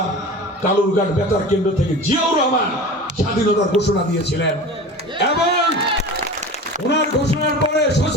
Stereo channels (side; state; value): both; normal; correlation 0.34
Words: কালুরঘাট বেতার কেন্দ্র থেকে জিয়াউর রহমান স্বাধীনতার ঘোষণা দিয়েছিলেন, এবং ওনার ঘোষণার পরে